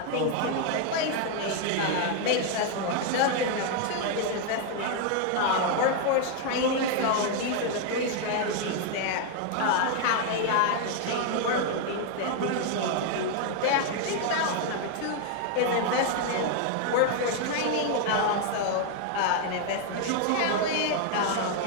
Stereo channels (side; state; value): both; different; correlation 0.01